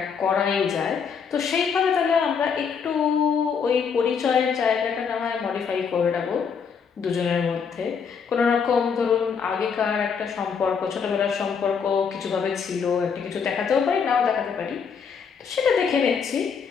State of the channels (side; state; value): right; quieter; 6.4 dB